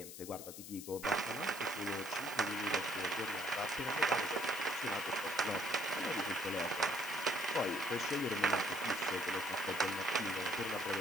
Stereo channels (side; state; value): left; noise; hiss, 11 dB below the sound